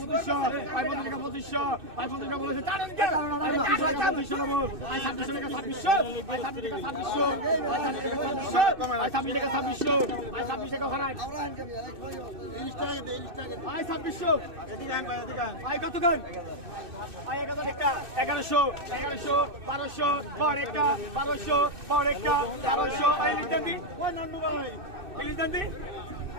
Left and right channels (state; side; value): late; left; 2.6 ms